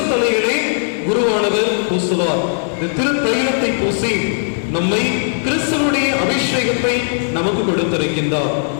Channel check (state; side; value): silent; right; 60 dB below the other